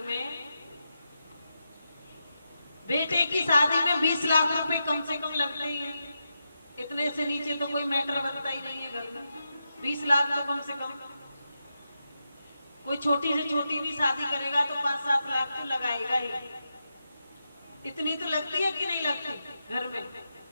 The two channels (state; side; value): inverted; both; correlation -0.88